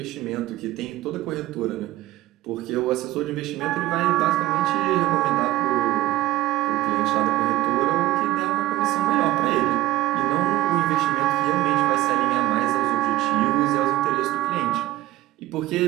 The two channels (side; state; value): left; quieter; 16.4 dB